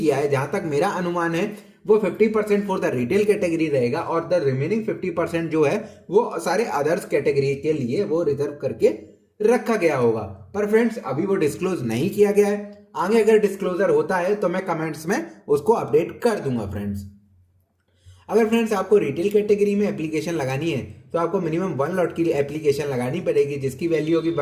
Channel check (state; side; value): identical; both; correlation 1.00